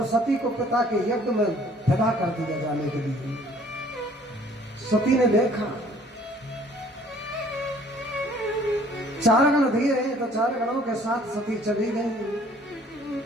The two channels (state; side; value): normal; both; correlation 0.56